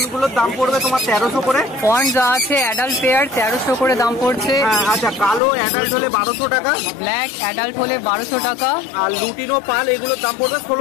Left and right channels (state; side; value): drops out; right; at 5.4 s